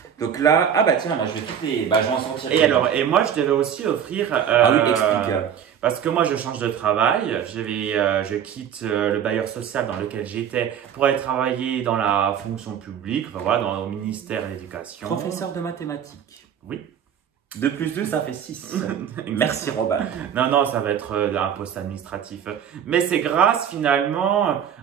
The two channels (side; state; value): left; quieter; 8.6 dB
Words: Donc là, ah bah tiens, moi je vais toutes les. Bah, je vais en sortir. Et moi, je devais aussi offrir. Ah oui, explique. Parce que moi, je change de travail. Je quitte le bailleur social dans lequel j'étais pour aller travailler dans la fonction publique, enfin, voilà, au ministère de l'Éducation. Professeur de mathématiques. Oui. 2 plus 2, ça fait 6. Merci Robin. Non, non, ça va être un poste administratif. Mais c'est grâce finalement